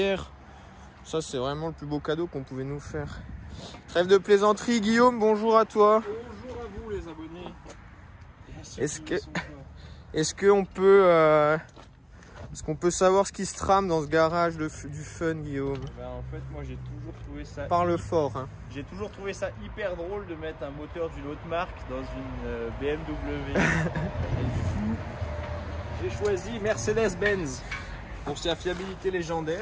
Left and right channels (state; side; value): identical; both; correlation 1.00